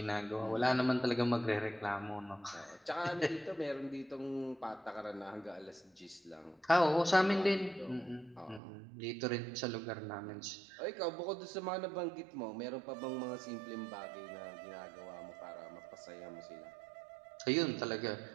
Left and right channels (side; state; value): left; drops out; at 8.6 s